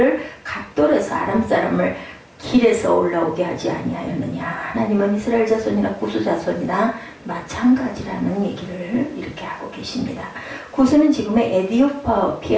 각돌에서 아람 사람을 길에서 올라오게 하지 아니하였느냐. 하나님은 이스라엘 자손이나 고수 자손이나 마찬가지라는 얘기를 이렇게 하고 계십니다. 고수는 지금의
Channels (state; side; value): identical; both; correlation 1.00